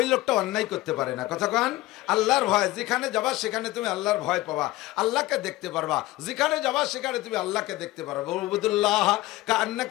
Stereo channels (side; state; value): right; quieter; 17.9 dB